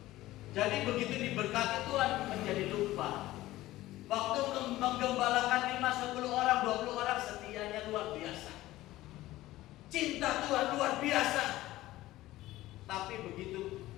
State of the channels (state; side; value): quieter; right; 16.4 dB